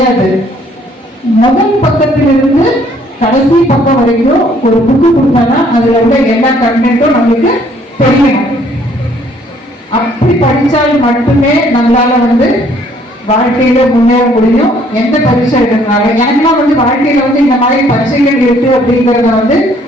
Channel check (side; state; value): both; normal; correlation 0.62